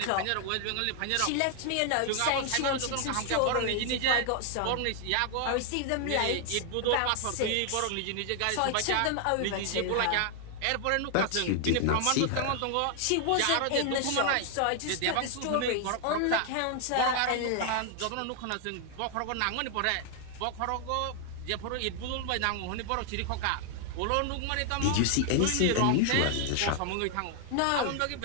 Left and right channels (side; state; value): both; different; correlation 0.00